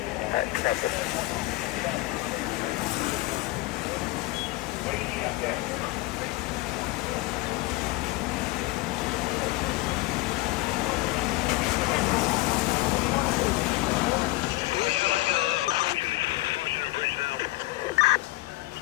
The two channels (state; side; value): quieter; right; 20.1 dB